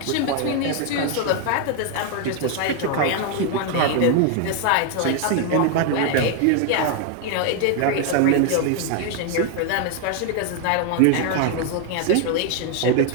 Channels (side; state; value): both; different; correlation 0.01